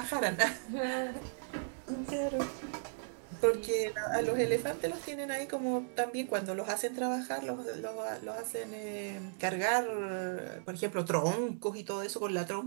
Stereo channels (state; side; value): silent; left; digital silence